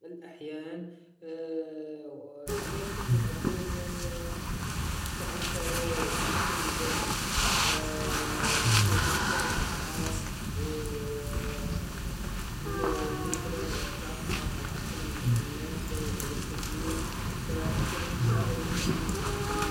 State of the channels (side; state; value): both; identical; correlation 1.00